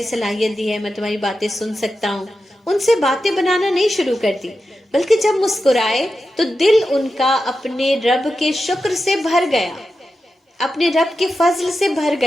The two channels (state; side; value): normal; both; correlation 0.90